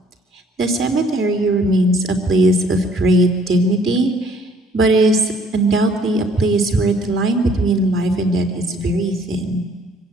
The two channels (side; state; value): both; normal; correlation 0.60